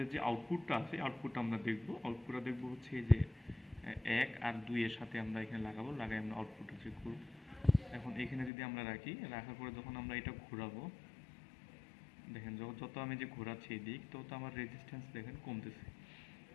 যে আউটপুটটা আছে, আউটপুটটা আমরা দেখবো। আউটপুটটা দেখবো হচ্ছে এই যে 1 আর 2 এর সাথে আমরা এখানে লাগাবো, লাগাই আমরা আউটপুটটা চেক করবো। এখন এখানে যদি আমরা রাখি, রাখার পরে যখন আমরা এটা ঘোরাবো, দেখেন যত আমি যে ঘোরাচ্ছি এই দিক, তত আমার রেজিস্ট্যান্স দেখেন কমতেছে।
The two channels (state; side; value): drops out; right; at 8.5 s